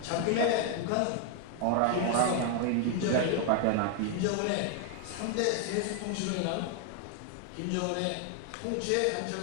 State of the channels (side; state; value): both; different; correlation 0.00